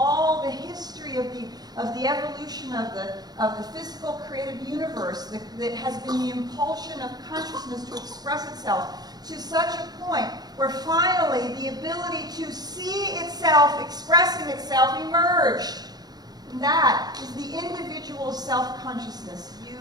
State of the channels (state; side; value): late; left; 0.19 ms